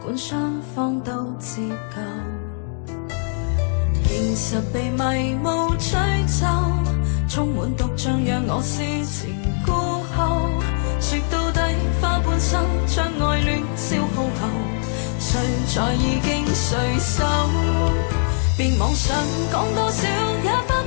管雙方都自救，現實被迷霧吹走，充滿毒醬讓我思前顧後。說到底花半生將愛戀消耗後，誰在意經誰手？別妄想講多少也翻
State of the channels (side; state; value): right; silent; 60 dB below the other